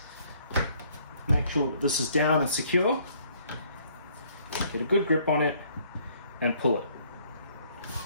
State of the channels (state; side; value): inverted; both; correlation -0.63